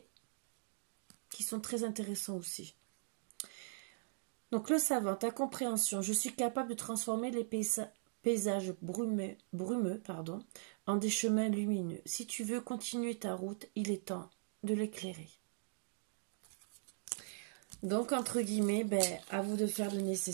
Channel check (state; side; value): silent; left; digital silence